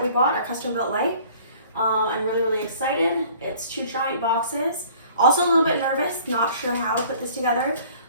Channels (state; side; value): inverted; both; correlation -0.52